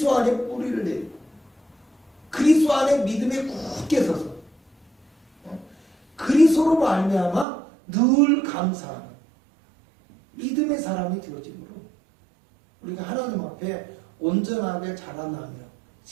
안에 뿌리를 내리고 그리스도 안에 믿음에 굳게 서서 그리스도로 말미암아 늘 감사하는 믿음의 사람이 되어지므로 우리가 하나님 앞에 온전하게 자라나며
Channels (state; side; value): drops out; left; at 7.5 s